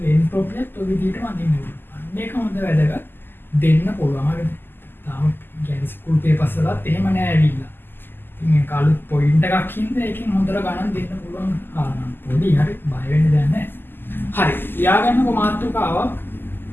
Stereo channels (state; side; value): late; right; 0.097 ms